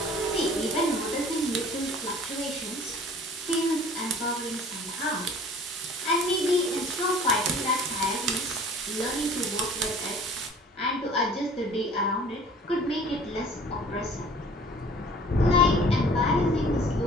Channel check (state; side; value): normal; both; correlation 0.49